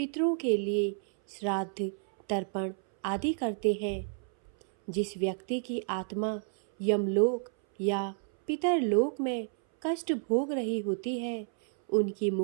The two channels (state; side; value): silent; left; 57 dB below the other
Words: के लिए श्राद्ध, तर्पण आदि करते हैं। जिस व्यक्ति की आत्मा यमलोक या पितरलोक में कष्ट भोग रही होती है, उनकी